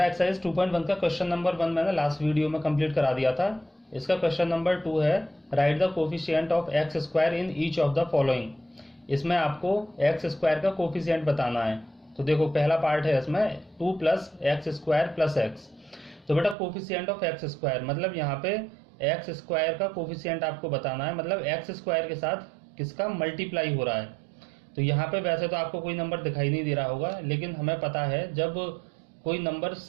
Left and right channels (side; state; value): left; drops out; at 16.6 s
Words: exercise 2.1 का क्वेश्चन नंबर 1 मैंने लास्ट वीडियो में कंप्लीट करा दिया था। इसका क्वेश्चन नंबर 2 है right the coefficient of x square in each of the following. इसमें आपको एक्स स्क्वायर का कोफिशिएंट बताना है। तो देखो पहला पार्ट है इसमें 2 plus x square plus x. तो बेटा कोफिशिएंट ऑफ एक्स स्क्वायर मतलब यहाँ पे एक्स स्क्वायर का कोफिशिएंट आपको बताना है, मतलब एक्स स्क्वायर के साथ किसका मल्टीप्लाई हो रहा है। तो यहाँ पे वैसे तो आपको कोई नंबर दिखाई नहीं दे रहा होगा, लेकिन हमें पता है जब कोई नंबर